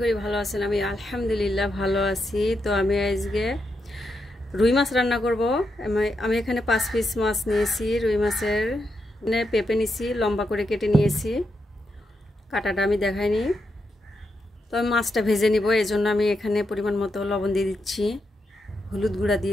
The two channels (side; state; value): both; normal; correlation 0.84